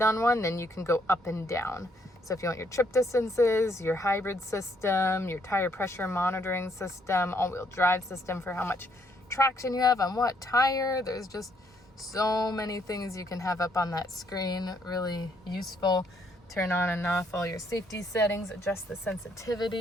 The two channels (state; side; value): normal; both; correlation 0.70